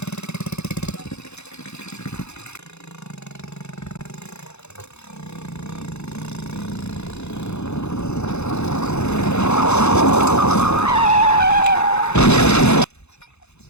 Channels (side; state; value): right; late; 0.81 ms